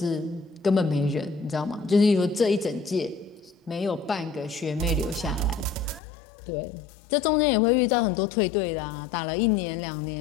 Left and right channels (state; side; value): drops out; right; at 6.0 s